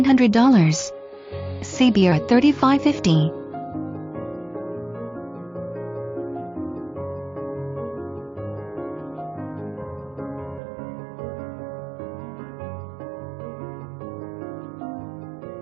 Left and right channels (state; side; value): drops out; left; at 10.6 s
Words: CBR at $35.50.